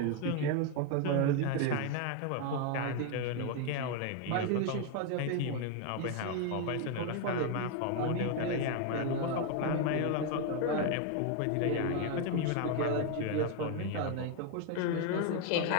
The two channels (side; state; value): both; different; correlation 0.01